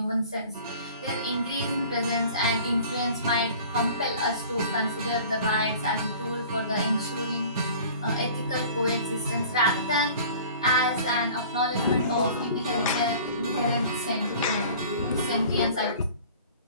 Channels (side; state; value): both; inverted; correlation -0.46